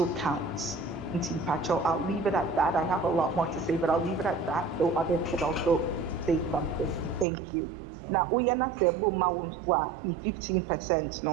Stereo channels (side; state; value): left; drops out; at 7.2 s